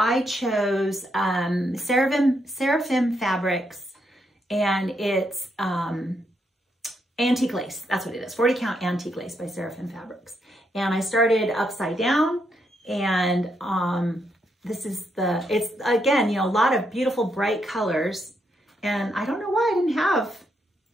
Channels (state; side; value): normal; both; correlation 0.79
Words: chose Seraphim Fabrics, and it's antique lace. That's what it is, 40 count antique lace by Seraphim Fabrics. And I started upside down, and this is it's again, you know, a lot of beautiful bright colors. And I don't know why I didn't have